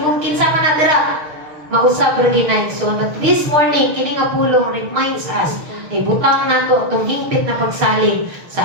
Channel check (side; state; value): left; late; 6.5 ms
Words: kinsa man na dira, mausab ra ginayson. But this morning, kini nga pulong reminds us na ibutang nato atong hingpit na pagsalig